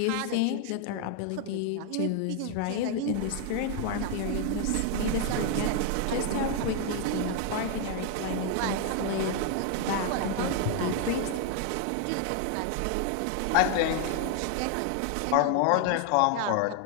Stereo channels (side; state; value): both; different; correlation 0.00